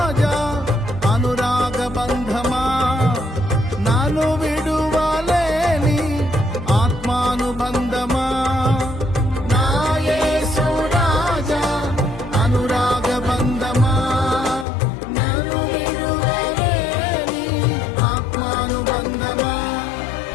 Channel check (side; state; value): right; drops out; at 14.7 s